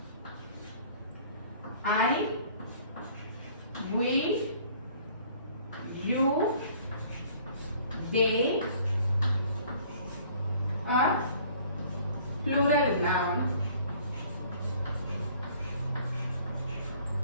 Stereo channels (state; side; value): inverted; both; correlation -0.55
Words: I, we, you, they are plural noun.